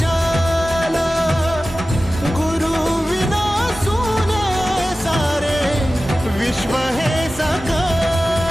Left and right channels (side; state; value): both; normal; correlation 0.95